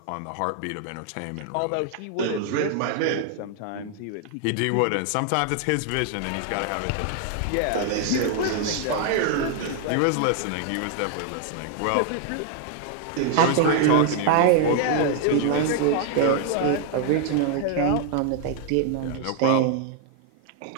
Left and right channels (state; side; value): different; both; correlation 0.00